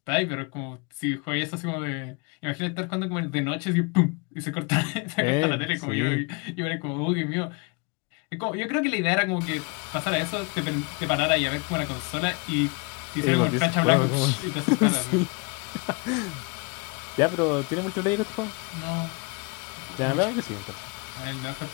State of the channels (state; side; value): quieter; right; 30.4 dB